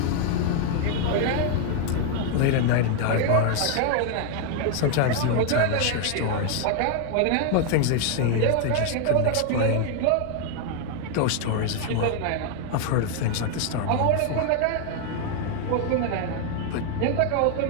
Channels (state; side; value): different; both; correlation 0.00